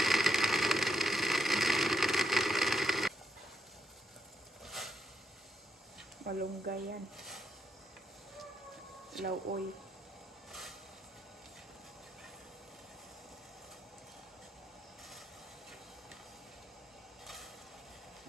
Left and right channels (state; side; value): normal; both; correlation 0.80